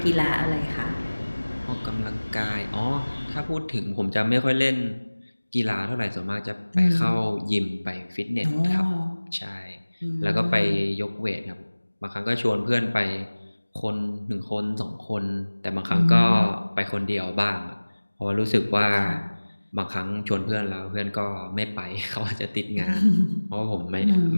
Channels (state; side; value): inverted; both; correlation -1.00